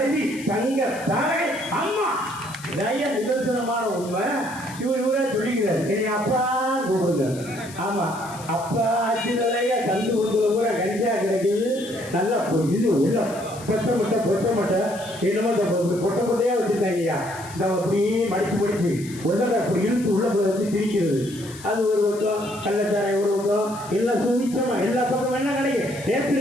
தங்க தாரை அம்மா. நிதர்சனமான உண்மை. இவரே சொல்லிக்கிறார், என்னை அப்பா கூப்பிடுங்க. ஆமா, அப்பா ஆட்சி தலைய கந்து கொடுக்குற கூட கஞ்சா கிடைக்குது. நல்லா இது உள்ள பொட்ட மட்டை என்னமோ பொட்ட பொட்டையா வச்சுருக்காங்கய்யா. இந்த அப்படியே மடிச்சு உள்ள அப்படி இழுத்து உள்ள வச்சு திரிக்கிறது. அது ஒரு பக்கம், கள்ளச்சாரை ஒரு பக்கம், எல்லாம் சுவிச்சமா எல்லா பக்கம் என்ன கிடைக்கும். நேற்று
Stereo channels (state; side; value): noise; left; hiss, 17 dB below the sound